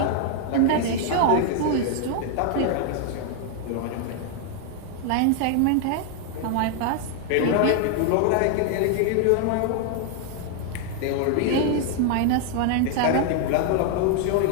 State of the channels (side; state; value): both; different; correlation 0.00